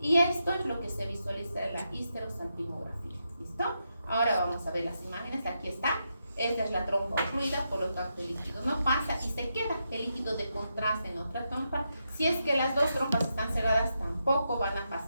esto es lo que se visualiza en la histerosalpingografía. ¿Listo? Ahora vamos a ver las imágenes. Aquí está. Esta es la trompa ocluida, por lo tanto el líquido no pasa y se queda el líquido de contraste en otra trompa. Si es que las dos trompas están cerradas, tampoco van a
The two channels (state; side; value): inverted; both; correlation -0.84